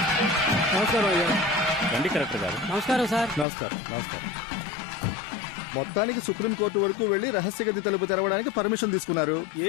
నమస్కారం అయ్యా. రండి కలెక్టర్ గారు. నమస్కారం సార్. నమస్కారం. నమస్కారం. మొత్తానికి సుప్రీంకోర్టు వరకు వెళ్లి రహస్య గది తలుపు తెరవడానికి పర్మిషన్ తీసుకున్నారు.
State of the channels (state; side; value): drops out; right; at 3.5 s